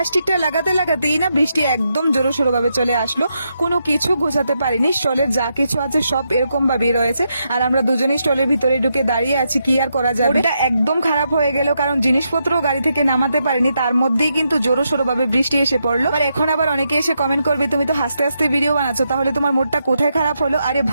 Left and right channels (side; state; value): both; inverted; correlation -0.82